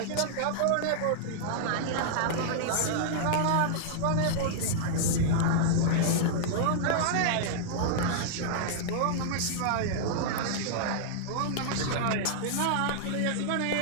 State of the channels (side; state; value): both; different; correlation -0.01